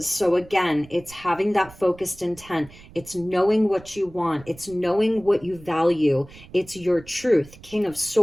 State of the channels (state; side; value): noise; right; rumble, 21 dB below the sound